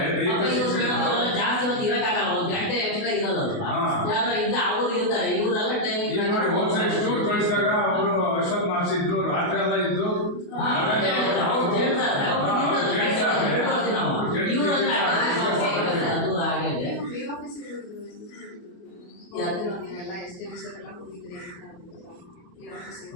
ಜಾಸ್ತಿ ಹೊತ್ತು ಇರಕ್ಕಾಗಲ್ಲ, 1 ಗಂಟೆ ಎಕ್ಸ್ಟ್ರಾ ಇರೋದಲ್ವಾ? ಯಾರು ಇಲ್ಲ ಅವ್ರು ಇರ್ತಾರೆ, ಇವರೆಲ್ಲ ಟೈಮಿಂಗ್ ನೋಡಿ ಹೋದ್ಸರಿ ಸ್ಟೂರ್ ಕಳಿಸಿದಾಗ ಅವರು ಅಶ್ವಥ್ ಮಾಡಿಸಿದ್ರು, ರಾತ್ರಿ ಎಲ್ಲ ಇದ್ದು ಅದು ಹಾಗೆ ನೀವೆಲ್ಲ SDMs ಎಲ್ಲ ಹೋಗಿದ್ರಿ ಅಂತ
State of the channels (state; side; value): late; right; 28 ms